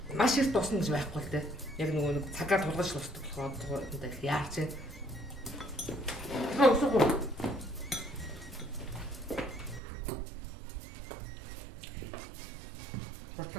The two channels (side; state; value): left; drops out; at 9.8 s